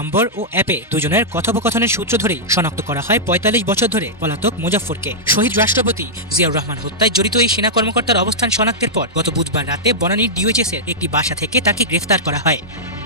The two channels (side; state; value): both; normal; correlation -0.10